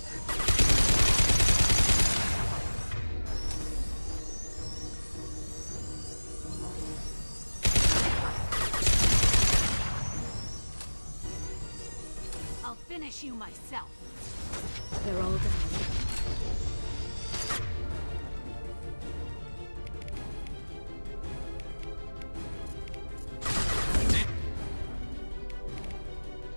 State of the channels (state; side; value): inverted; both; correlation -1.00